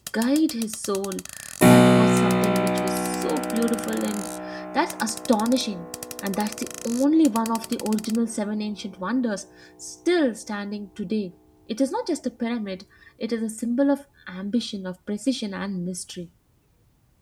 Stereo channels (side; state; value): both; identical; correlation 1.00